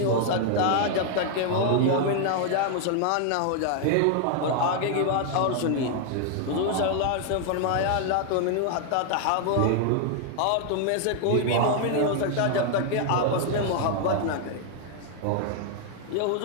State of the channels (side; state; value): both; different; correlation 0.00